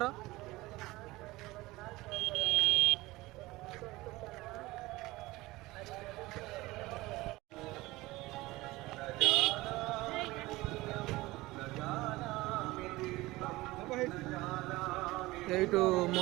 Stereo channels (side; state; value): left; quieter; 19.8 dB